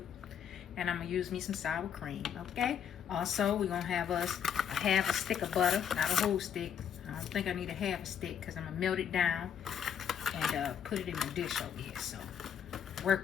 And I'm gonna use me some sour cream, okay? Also, we're gonna have us a half a stick of butter, not a whole stick. I don't think I need a half a stick because I'm gonna melt it down and put it in my dish over here, so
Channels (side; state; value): right; quieter; 8.4 dB